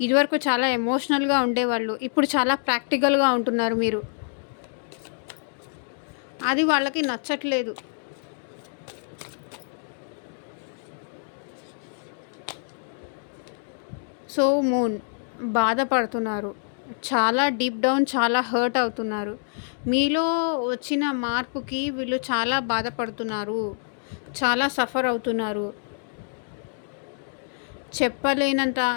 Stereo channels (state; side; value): silent; right; digital silence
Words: ఇదివరకు చాలా ఎమోషనల్గా ఉండేవాళ్ళు, ఇప్పుడు చాలా ప్రాక్టికల్గా ఉంటున్నారు మీరు. అది వాళ్ళకి నచ్చట్లేదు. సో మూన్ బాధపడుతున్నారు, చాలా డీప్ డౌన్ చాలా హర్ట్ అవుతున్నారు. మీలో వచ్చిన మార్పుకి వీళ్ళు చాలా బాధపడుతున్నారు, చాలా సఫర్ అవుతున్నారు, చెప్పలేనంత